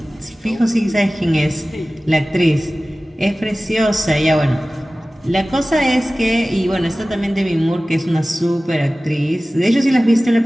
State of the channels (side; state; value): both; normal; correlation 0.97